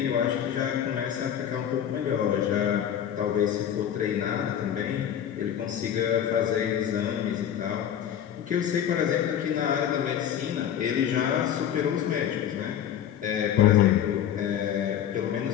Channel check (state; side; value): quieter; right; 9.9 dB